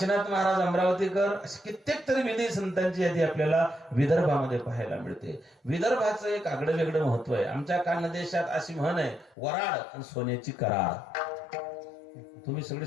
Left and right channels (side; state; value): right; drops out; at 9.3 s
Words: महाराज अमरावतीकर, असे कित्येक तरी विधी संतांची यादी आपल्याला विदर्भामध्ये पाहायला मिळते. विदर्भाचं एक आगळं वेगळं महत्व आहे. आमच्या खानदेशात अशी म्हण आहे, वराड आणि सोन्याची कराड. तुम्ही सगळे